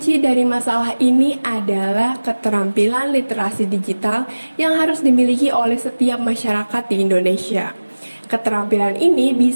dari masalah ini adalah keterampilan literasi digital yang harus dimiliki oleh setiap masyarakat di Indonesia. Keterampilan ini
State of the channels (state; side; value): inverted; both; correlation -1.00